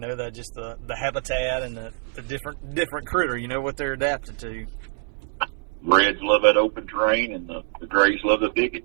that just the habitat and the different critter, what they're adapted to. Reds love that open terrain, and the grays love the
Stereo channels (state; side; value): silent; left; 62 dB below the other